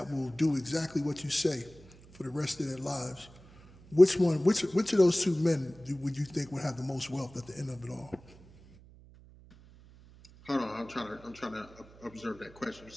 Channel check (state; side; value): noise; right; hum, 23 dB below the sound